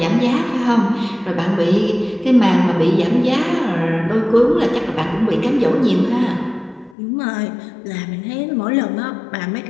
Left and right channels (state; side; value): drops out; right; at 7.0 s